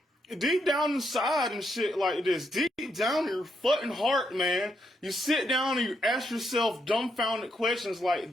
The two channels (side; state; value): both; normal; correlation 0.78